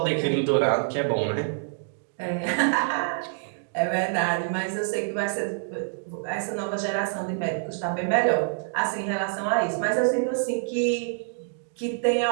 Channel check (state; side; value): silent; left; digital silence